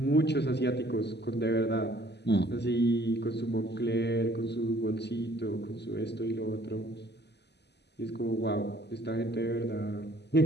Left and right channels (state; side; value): late; right; 0.50 ms